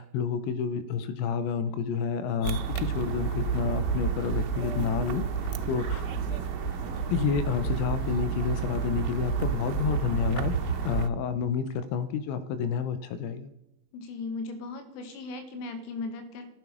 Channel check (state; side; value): late; right; 22 ms